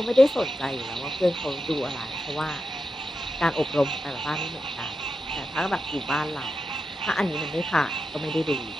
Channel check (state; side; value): normal; both; correlation 0.89